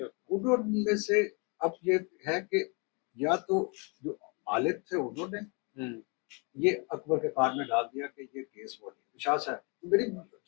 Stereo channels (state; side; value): quieter; right; 32.7 dB